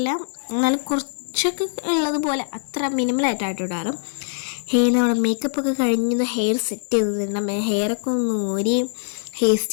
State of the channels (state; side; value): silent; right; 64 dB below the other